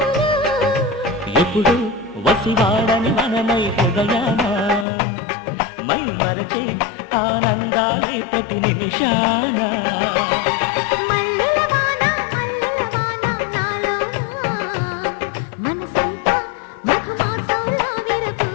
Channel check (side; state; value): right; drops out; at 4.9 s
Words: ఎప్పుడు వసివాడని మనమై హృదయాన మై మరచే ఆనందాలే ప్రతి నిమిషాన మల్లెల వాన నాలోన మనసంతా మధుమాసంలా